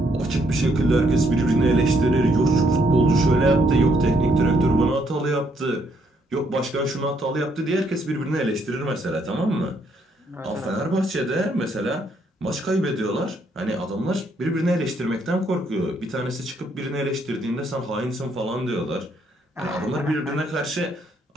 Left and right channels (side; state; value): both; normal; correlation 0.71